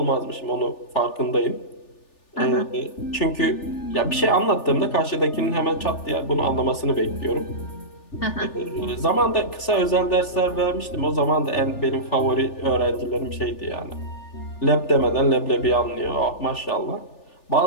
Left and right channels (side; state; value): right; late; 3.4 ms